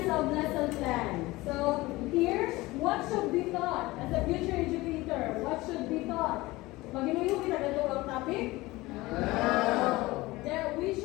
of lesson plan. So here, what should be taught as a future educator? What should be taught? Maginuyo kita ganito ang topic? No. There, we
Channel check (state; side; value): quieter; right; 20.1 dB